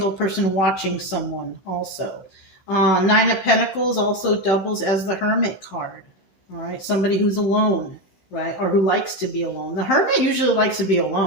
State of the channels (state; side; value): late; right; 16 ms